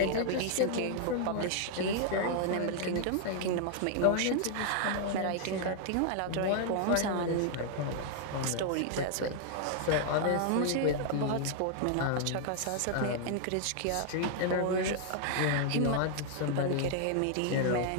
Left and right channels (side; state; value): both; different; correlation -0.01